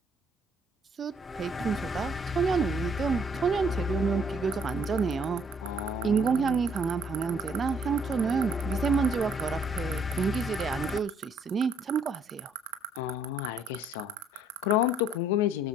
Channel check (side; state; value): both; normal; correlation 0.64